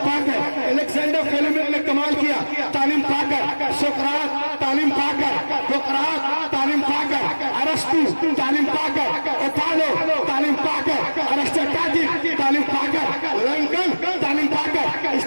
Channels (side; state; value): both; inverted; correlation -1.00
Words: پا کر، الیگزینڈر فلیمنگ نے کمال کیا تعلیم پا کر، سقراط تعلیم پا کر، سقراط تعلیم پا کر، ارسطو تعلیم پا کر، اوتالو تعلیم پا کر، ارسطاٹل تعلیم پا کر، لنکن تعلیم پا کر،